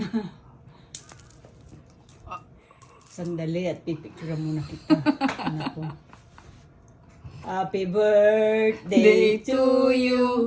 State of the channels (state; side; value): identical; both; correlation 1.00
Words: Sandali at pipicture muna kita. Anak ko. Happy birthday to